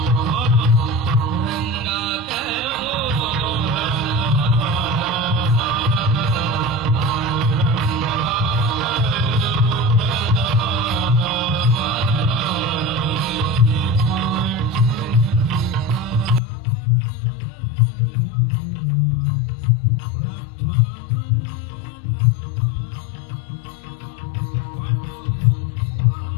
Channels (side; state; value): right; drops out; at 16.4 s